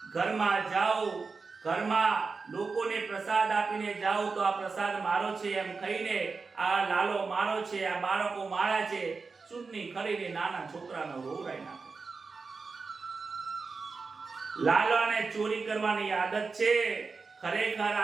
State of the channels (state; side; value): quieter; left; 4.5 dB